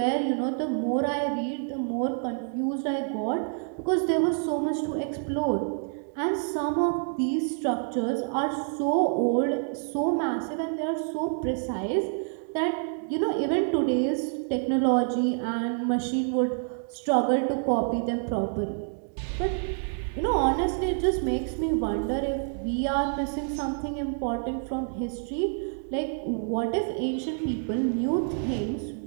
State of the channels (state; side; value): silent; left; 60 dB below the other